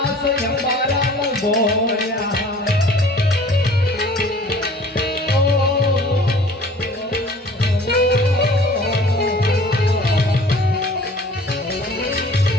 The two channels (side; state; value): both; normal; correlation 0.49